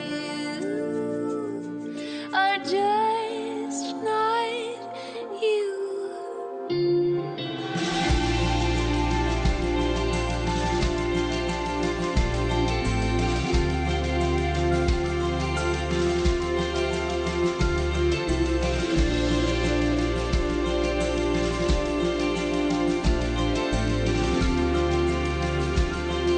are just not you.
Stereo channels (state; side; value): identical; both; correlation 1.00